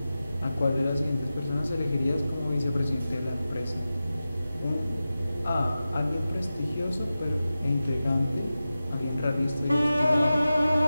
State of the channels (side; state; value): both; inverted; correlation -0.94